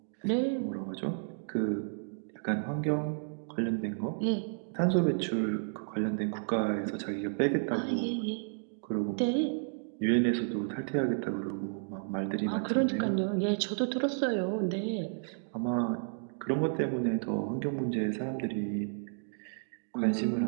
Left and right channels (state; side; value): silent; left; digital silence